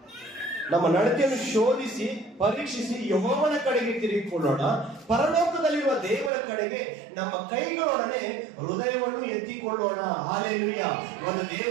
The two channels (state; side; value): drops out; left; at 6.3 s